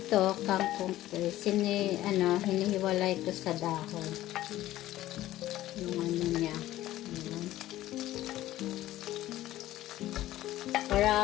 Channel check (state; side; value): quieter; right; 14.8 dB